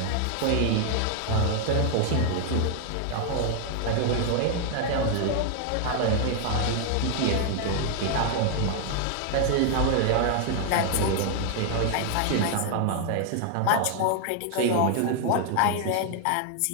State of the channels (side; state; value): both; different; correlation 0.00